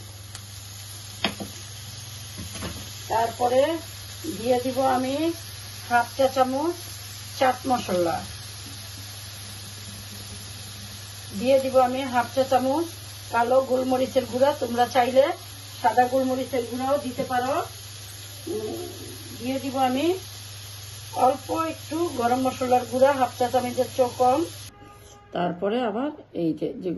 তারপরে দিয়ে দিব আমি 1/2 চা চামচ চাট মশলা, দিয়ে দিব আমি 1/2 চা চামচ কালো গোলমরিচের গুঁড়া, তোমরা চাইলে সাদা গোলমরিচের গুঁড়াও দিতে পারো। দিয়ে দিব আমি অল্প একটু গরম মশলার গুঁড়া, 1/2 চা চামচের চেয়েও কম। তারপরে আবার এই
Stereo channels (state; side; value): identical; both; correlation 1.00